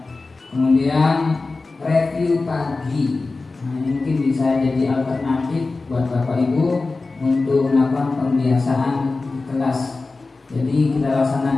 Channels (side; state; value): right; quieter; 3.7 dB